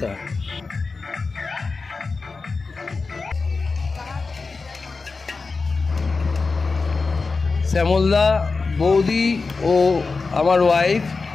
Shyamalda, বৌদি ও আমার ওয়াইফ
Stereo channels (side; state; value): right; quieter; 4.2 dB